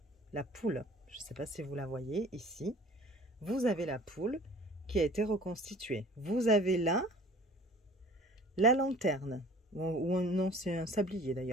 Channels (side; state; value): both; normal; correlation 0.47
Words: la poule. Je ne sais pas si vous la voyez ici. Vous avez la poule qui a été reconstituée. Vous avez là la lanterne. Ou non, c'est un sablier